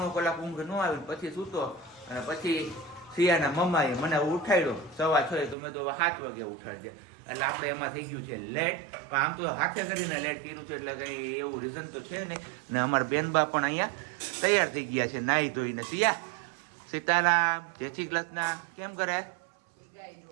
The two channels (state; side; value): drops out; left; at 5.6 s